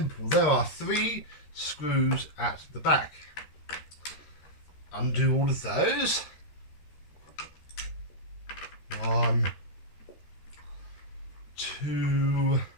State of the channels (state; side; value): late; right; 13 ms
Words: There are 3 screws at the back. Undo all of those. 1, 2,